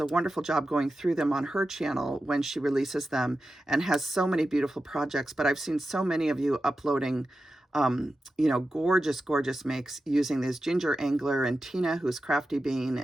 wonderful job going through them on her channel when she releases them and has so many beautiful projects. But I've seen so many of you uploading gorgeous, gorgeous makes using this. Ginger Angler and Tina, who's Crafty Bean,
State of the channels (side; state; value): both; normal; correlation 0.92